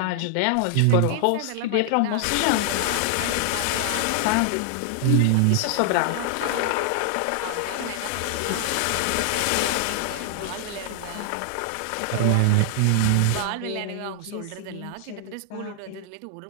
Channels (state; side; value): different; both; correlation 0.00